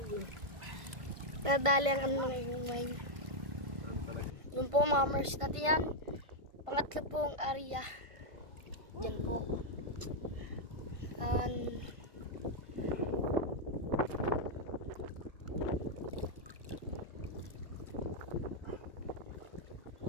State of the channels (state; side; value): late; left; 1.5 ms